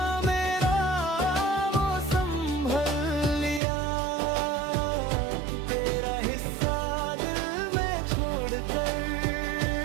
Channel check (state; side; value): drops out; left; at 3.6 s